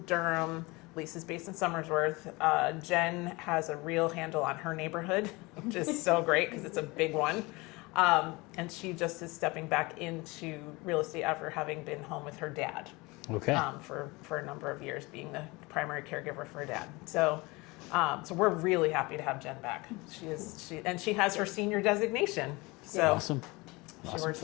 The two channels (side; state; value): right; quieter; 24.0 dB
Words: Durham. Lisa's based in Somersworth. Jen has a real handle on her neighborhood, which is so great because it's a big one. And she just is stepping back into real estate after having been home with her dad Okay. for a number of years, being the primary caregiver for her dad. So we're really happy to have Jen back. She has her senior designation. So Awesome. she works with